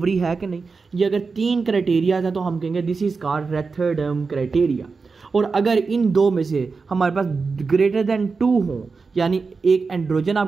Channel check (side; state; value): left; quieter; 4.6 dB